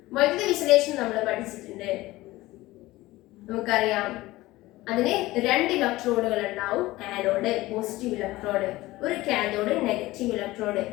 വൈദ്യുത വിശ്ലേഷണം നമ്മൾ പഠിച്ചിട്ടുണ്ട്, നമുക്കറിയാം. അതിന് 2 ഇലക്ട്രോഡുകൾ ഉണ്ടാവും. ആനോഡ് പോസിറ്റീവ് ഇലക്ട്രോഡ്, ഒരു കാഥോഡ് നെഗറ്റീവ് ഇലക്ട്രോഡ്.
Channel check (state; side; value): quieter; right; 18.4 dB